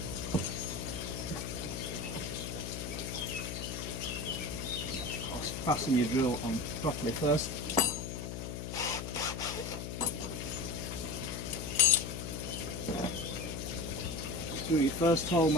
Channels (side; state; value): left; noise; hum, 6 dB below the sound